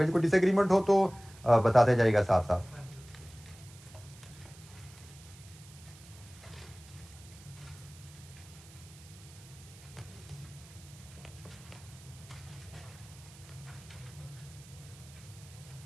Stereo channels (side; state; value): right; noise; hiss, 21 dB below the sound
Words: जी। कोई डिसएग्रीमेंट हो तो बताते जाएगा साथ साथ।